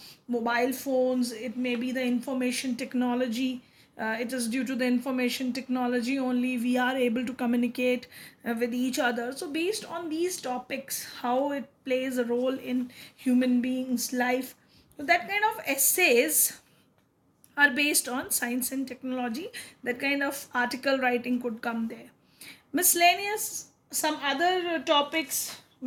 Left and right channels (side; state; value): both; identical; correlation 1.00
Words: mobile phones, it may be the information technology. It is due to the information technology only we are able to communicate with each other. So based on these topics, how it plays a role in human beings life, so that kind of essays are based on science and technology. That kind of article writing could come there. Miscellaneous, some other topics